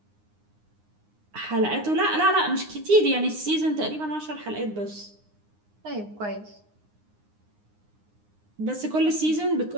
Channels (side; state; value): left; late; 9.7 ms